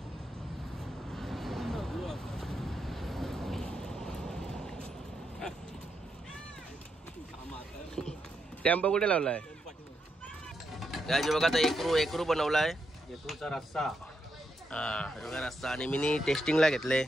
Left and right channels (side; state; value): both; normal; correlation 0.82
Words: टेम्पो कुठे लावलाय? त्याची बघा आता एकरू बनवलाय. एकरूचा रस्सा. हा बघा रस्सा. आणि मी टेस्टिंगला घेतले.